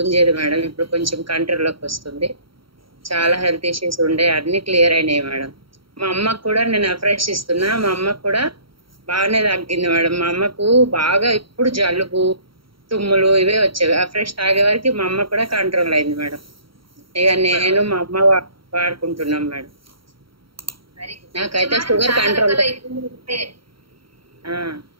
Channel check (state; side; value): late; left; 0.74 ms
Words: మేడం, ఇప్పుడు కొంచెం కంట్రోల్లోకి వస్తుంది. చాలా హెల్త్ ఇష్యూస్ ఉండే, అన్ని క్లియర్ అయినాయి మేడం. మా అమ్మకు కూడా నేను అఫ్రెష్ ఇస్తున్నా, మా అమ్మకు కూడా బాగానే తగ్గింది మేడం. మా అమ్మకు బాగా ఇప్పుడు జలుబు, తుమ్ములు ఇవే వచ్చేవి. అఫ్రెష్ తాగే వరకు మా అమ్మ కూడా కంట్రోల్ అయింది మేడం. ఇక నేను మా అమ్మ వాడుకుంటున్నాం మేడం. నాకైతే షుగర్ కంట్రోల్.